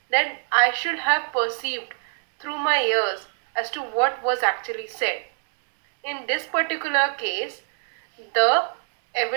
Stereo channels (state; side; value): silent; left; digital silence